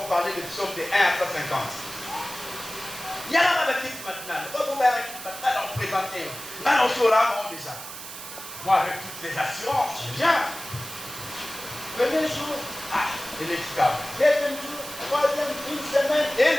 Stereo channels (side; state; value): right; noise; hiss, 11 dB below the sound